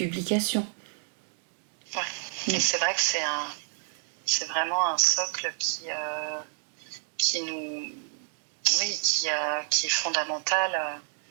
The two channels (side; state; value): left; silent; 58 dB below the other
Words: Ouais. Et c'est vrai que c'est vraiment un socle qui est fondamental